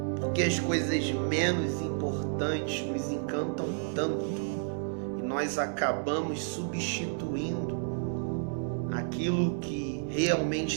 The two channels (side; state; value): left; silent; 57 dB below the other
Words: Porque as coisas menos importantes nos encantam tanto e nós acabamos substituindo aquilo que